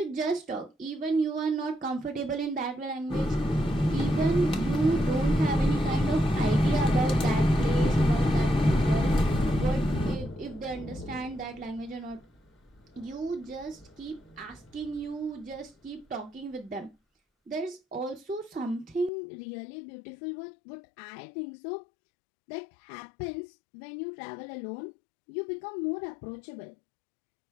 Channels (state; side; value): drops out; right; at 19.1 s